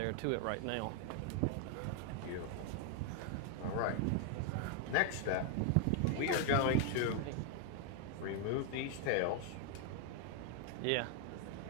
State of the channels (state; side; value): different; both; correlation 0.00